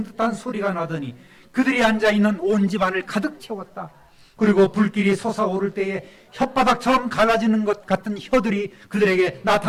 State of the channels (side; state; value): both; identical; correlation 1.00